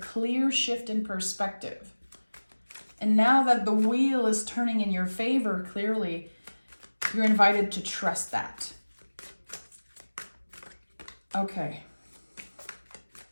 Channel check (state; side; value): inverted; both; correlation -1.00